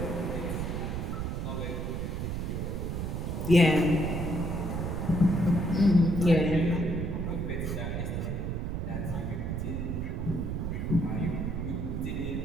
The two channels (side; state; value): right; noise; rumble, 2 dB below the sound